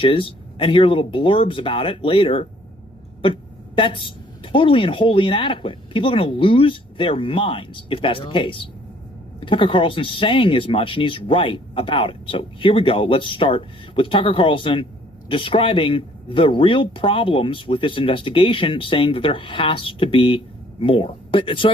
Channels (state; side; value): normal; both; correlation 0.60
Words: and hear little blurbs about it later. But that's totally and wholly inadequate. People are going to lose their minds if that's the case. Tucker Carlson's saying as much, and he's right about it. So here we go. Let's start with Tucker Carlson describing the real problems with this investigation, saying that there has to be more. But so